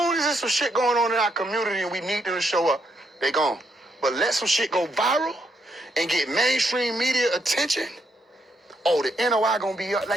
as there's some shit going on in our community and we need them to show up, they gone. But let some shit go viral and get mainstream media attention. Oh, the NOI gonna be up.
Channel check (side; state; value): both; normal; correlation 0.77